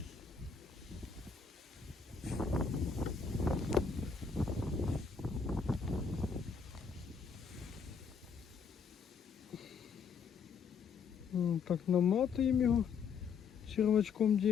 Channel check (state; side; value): quieter; right; 5.9 dB